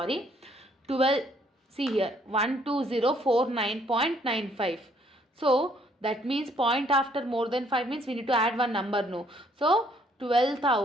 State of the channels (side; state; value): both; normal; correlation 0.65